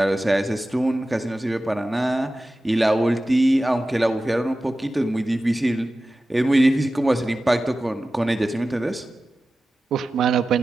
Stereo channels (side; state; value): both; normal; correlation 0.94